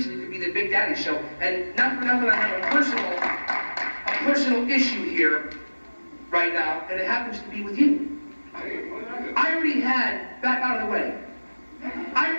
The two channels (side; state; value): both; inverted; correlation -1.00